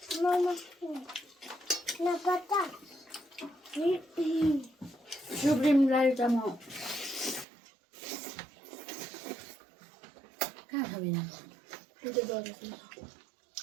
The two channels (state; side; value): drops out; left; at 7.5 s